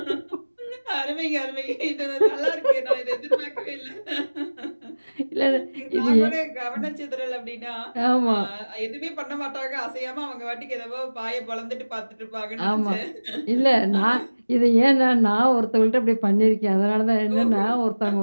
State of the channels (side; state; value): both; inverted; correlation -1.00